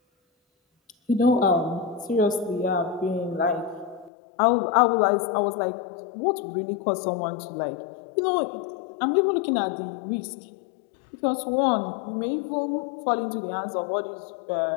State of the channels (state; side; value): drops out; right; at 4.1 s